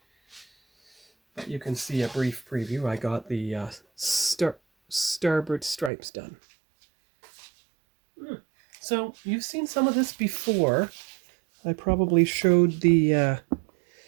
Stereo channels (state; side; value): drops out; left; at 5.9 s